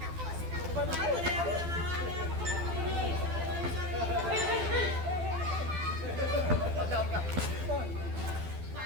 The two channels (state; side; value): late; left; 12 ms